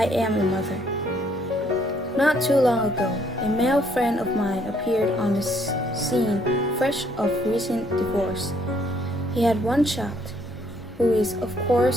am a mother. Not too long ago, a male friend of mine appeared on the scene fresh of recent divorce. He had one child, who is, of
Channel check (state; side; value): normal; both; correlation 0.66